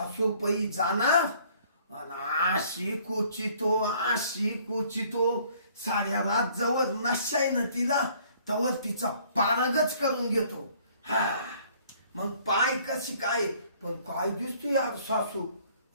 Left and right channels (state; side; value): inverted; both; correlation -0.59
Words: जाणार आणि अशी कोचितो साऱ्या रात जवळ नशा आहे ना तिला, तवर तिचा पारगच करून घेतो. हा मग पाय कशी काय, पण काय दिसतो यार सासू.